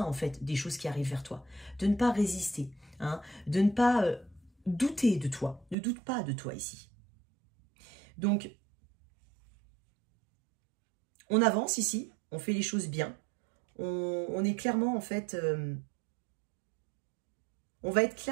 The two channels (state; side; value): drops out; left; at 5.8 s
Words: en fait des choses qui arrivent vers toi, de ne pas résister, hein, de ne pas douter de toi, ne doute pas de toi ici. Donc, on avance ici, on fait les choses bien, on est clairement en fait, on va être